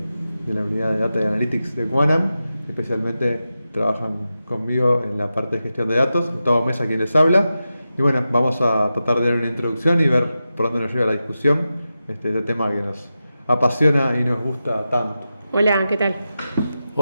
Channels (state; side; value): inverted; both; correlation -0.91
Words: la unidad de Data y Analytics de Quanam. Especialmente trabajan conmigo en la parte de gestión de datos. Gustavo Mesa, quien les habla. Y bueno, vamos a tratar de dar una introducción y ver por dónde nos lleva la discusión. Este tema que nos apasiona y nos gusta tanto. Hola, ¿qué tal?